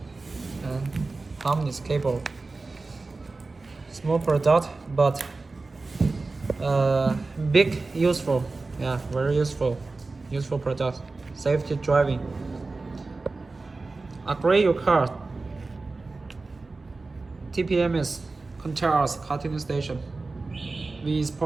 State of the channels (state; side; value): quieter; left; 3.6 dB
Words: And harmonious cable. Small product, but big, useful. Yeah, very useful product. Safety driving. Upgrade your car. TPMS controls car tuning station. We